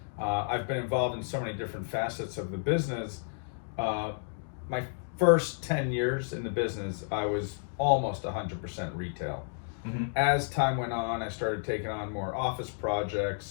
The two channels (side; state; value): right; silent; digital silence